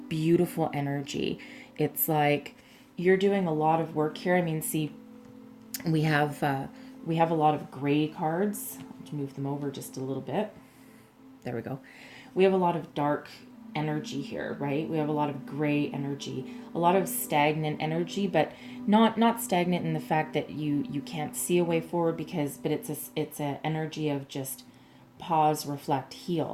beautiful energy. It's like you're doing a lot of work here. I mean, see, we have a lot of gray cards. Let's move them over just a little bit. There we go. We have a lot of dark energy here, right? We have a lot of gray energy, a lot of stagnant energy, but not stagnant in the fact that you can't see a way forward, but it's a energy of just pause, reflect,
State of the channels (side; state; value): both; identical; correlation 1.00